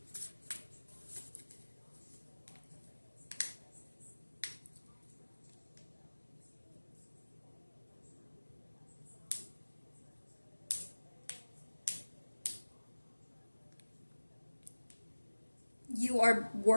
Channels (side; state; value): both; inverted; correlation -1.00